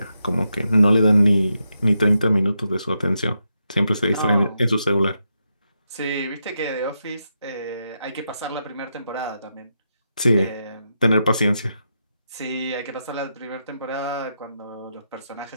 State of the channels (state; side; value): inverted; both; correlation -0.84